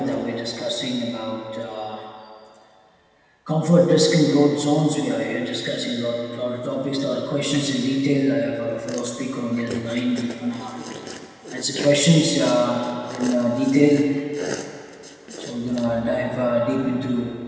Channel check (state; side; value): identical; both; correlation 1.00